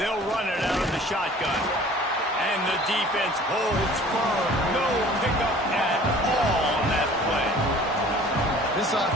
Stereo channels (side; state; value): both; normal; correlation 0.49